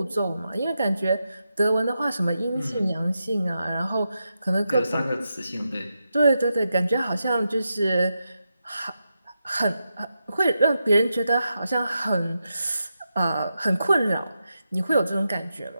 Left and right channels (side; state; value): both; inverted; correlation -0.87